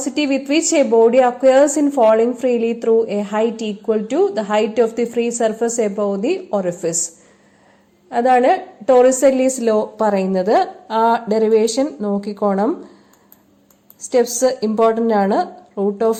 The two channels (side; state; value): both; identical; correlation 1.00